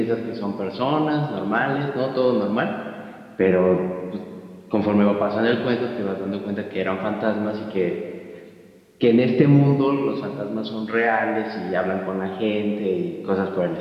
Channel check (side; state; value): both; identical; correlation 1.00